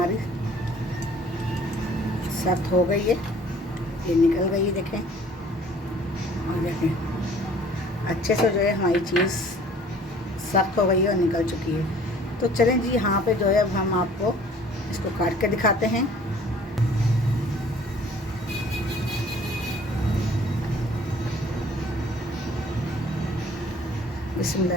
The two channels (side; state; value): both; normal; correlation 0.53